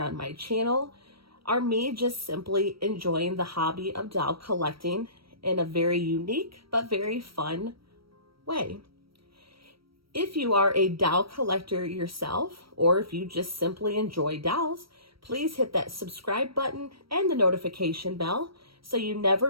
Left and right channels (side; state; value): left; late; 0.75 ms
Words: my channel are me just simply enjoying the hobby of doll collecting in a very unique but very fun way. If you are a doll collector yourself, or if you just simply enjoy dolls, please hit that subscribe button and the notification bell so you